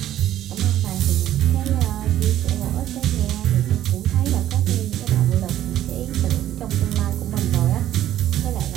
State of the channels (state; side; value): quieter; left; 12.4 dB